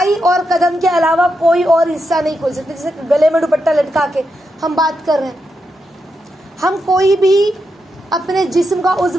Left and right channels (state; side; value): normal; both; correlation 0.85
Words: اور قدم کے علاوہ کوئی اور حصہ نہیں کھول سکتے. جیسے گلے میں دوپٹہ لٹکا کے ہم بات کر رہے ہیں, ہم کوئی بھی اپنے جسم کا